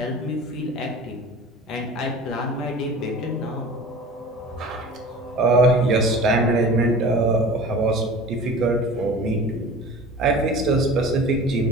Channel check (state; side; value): normal; both; correlation 0.39